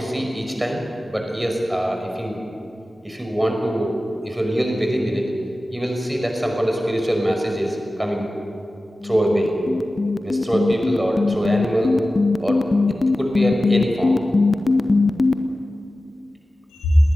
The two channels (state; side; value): normal; both; correlation 0.95